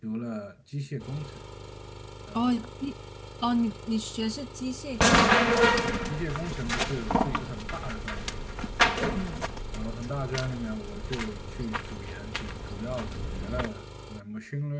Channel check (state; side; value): identical; both; correlation 1.00